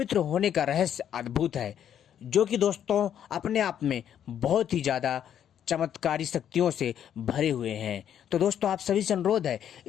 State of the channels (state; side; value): quieter; right; 9.6 dB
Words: होने का रहस्य अद्भुत है, जो कि दोस्तों अपने आप में बहुत ही ज़्यादा चमत्कारी शक्तियों से भरे हुए हैं। तो दोस्तों आप सभी से अनुरोध है,